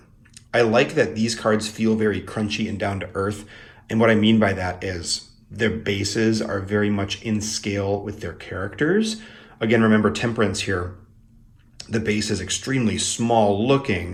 I like that these cards feel very crunchy and down to earth. And what I mean by that is their bases are very much in scale with their characters. Again, remember Temperance here. The base is extremely small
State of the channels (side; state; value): both; identical; correlation 1.00